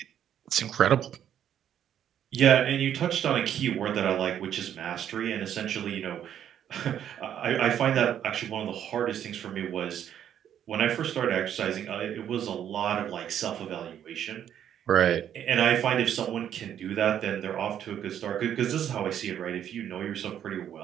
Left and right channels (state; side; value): quieter; left; 9.9 dB